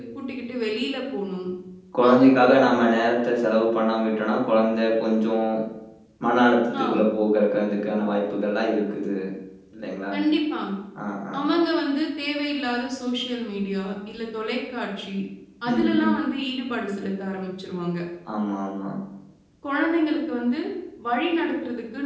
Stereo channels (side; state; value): both; identical; correlation 1.00